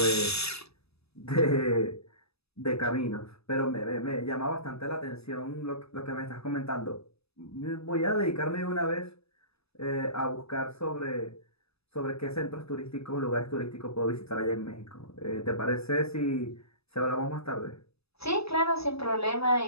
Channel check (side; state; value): right; late; 0.79 ms